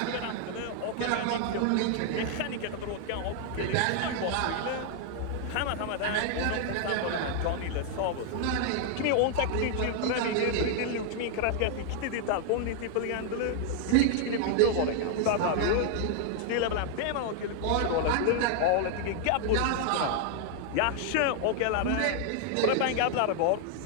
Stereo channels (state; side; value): different; both; correlation 0.00